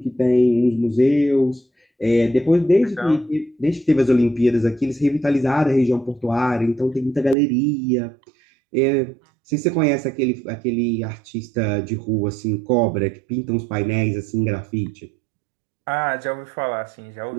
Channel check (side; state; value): left; drops out; at 7.4 s